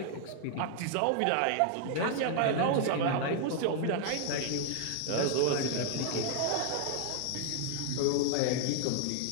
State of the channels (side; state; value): both; different; correlation 0.00